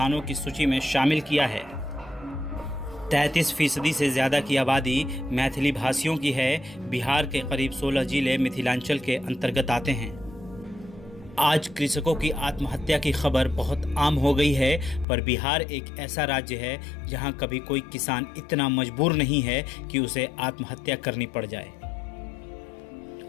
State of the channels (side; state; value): right; drops out; at 15.1 s